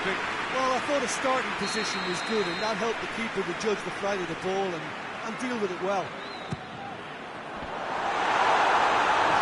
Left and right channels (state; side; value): identical; both; correlation 1.00